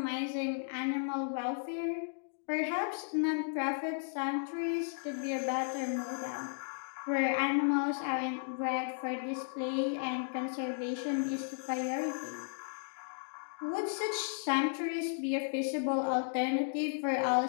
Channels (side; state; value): right; silent; digital silence